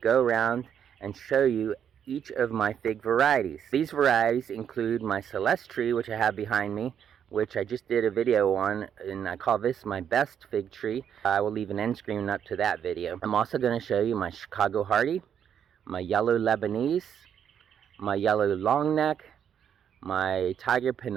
around and show you each of my fig varieties. These varieties include my Celeste tree, which I have behind me, which I just did a video on, and I call this my best fig tree. I will leave an end screen up to that video. I'm also going to show you my Chicago Hardy, my yellow Lebanese, my yellow long neck, my tiger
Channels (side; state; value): left; quieter; 8.6 dB